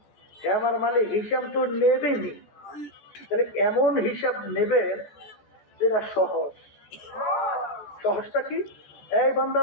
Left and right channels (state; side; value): late; right; 14 ms